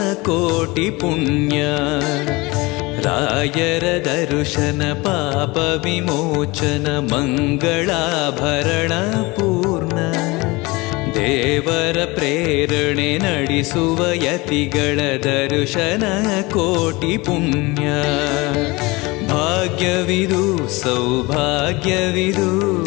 ಕೋಟಿ ಪುಣ್ಯ ರಾಯರ ದರ್ಶನ ಪಾಪ ವಿಮೋಚನ ಮಂಗಳಾಭರಣ ಪೂರ್ಣ ದೇವರ ಪ್ರೇರಣೆ ನಡೆಸುವ ಯತಿಗಳ ದರ್ಶನ ಕೋಟಿ ಪುಣ್ಯ ಭಾಗ್ಯವಿದು ಸೌಭಾಗ್ಯವಿದು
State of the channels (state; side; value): quieter; right; 23.6 dB